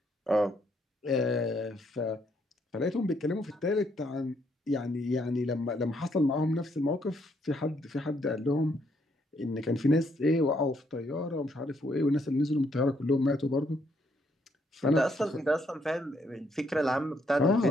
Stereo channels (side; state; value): both; normal; correlation 0.72